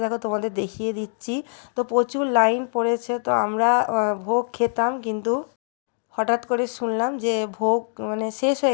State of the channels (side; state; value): right; silent; digital silence